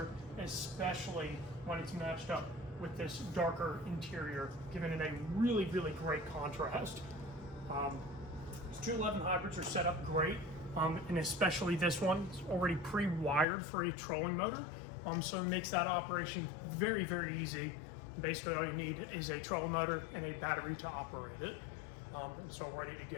especially when it's matched up with this darker interior, giving it a really great contrast. These 211 hybrids are set up great, and especially this one, it's already pre-wired for a trolling motor, so it makes that operation very easy. Basically all you need is a trolling motor and a battery to operate it, and it's all ready to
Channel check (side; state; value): right; drops out; at 13.5 s